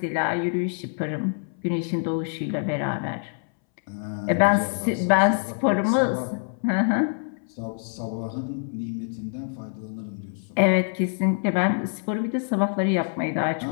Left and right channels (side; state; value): right; silent; 61 dB below the other